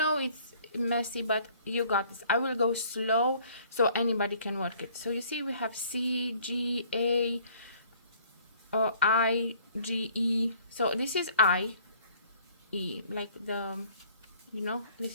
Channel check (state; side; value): inverted; both; correlation -0.57